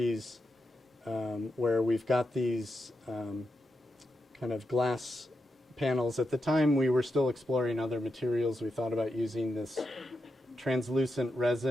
where we've got these kind of glass panels. At the time, we were still exploring other materials. We thought about using this translucent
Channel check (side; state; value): both; normal; correlation 0.86